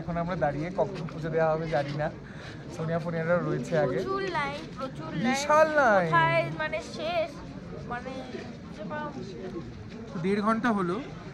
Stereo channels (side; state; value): both; identical; correlation 1.00